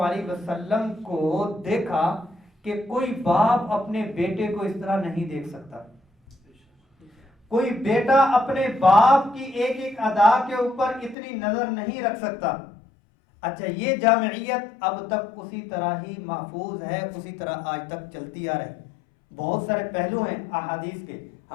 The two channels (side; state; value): right; drops out; at 11.2 s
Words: علیہ وسلم کو دیکھا کہ کوئی باپ اپنے بیٹے کو اس طرح نہیں دیکھ سکتا، کوئی بیٹا اپنے باپ کی ایک ایک ادا کے اوپر اتنی نظر نہیں رکھ سکتا۔ اچھا، یہ جامعیت اب تک اسی طرح ہی محفوظ ہے، اسی طرح آج تک چلتی آ رہی۔ بہت سارے پہلو ہیں احادیث کے،